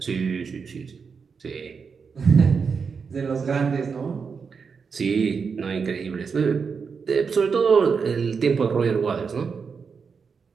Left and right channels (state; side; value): quieter; left; 5.7 dB